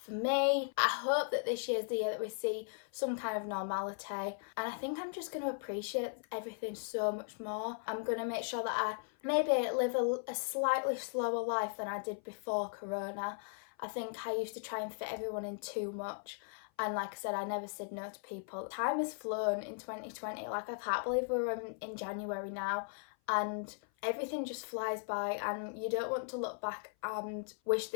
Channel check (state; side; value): silent; right; 53 dB below the other